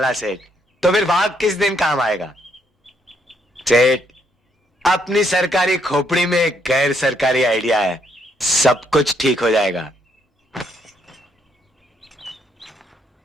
सेठ, तो फिर भाग किस दिन काम आएगा? सेठ, अपनी सरकारी खोपड़ी में एक गैर सरकारी आइडिया है, सब कुछ ठीक हो जाएगा।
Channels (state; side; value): normal; both; correlation 0.73